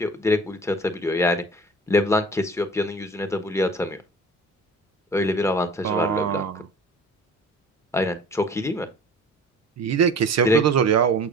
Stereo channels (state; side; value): normal; both; correlation 0.43